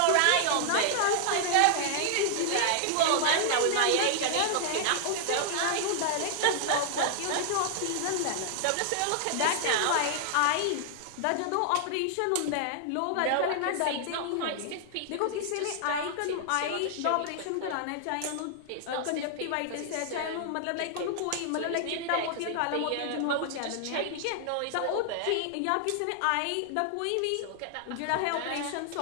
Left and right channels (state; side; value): different; both; correlation -0.01